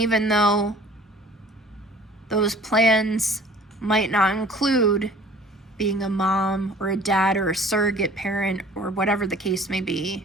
though those plans might not include being a mom or a dad or a surrogate parent or whatever the case may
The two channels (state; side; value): normal; both; correlation 0.49